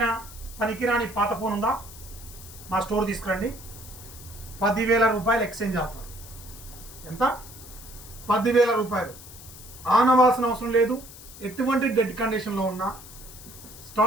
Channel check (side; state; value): left; noise; hiss, 17 dB below the sound